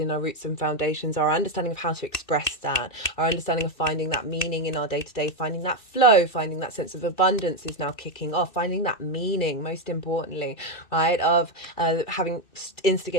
our roots and foundations, our understanding of how to express that, our understanding of finding that meaning in our day-to-day, finding that flow, finding that sense of abundance is now kicking off, finding that meaning, most importantly, right, of having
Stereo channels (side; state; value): right; late; 2.6 ms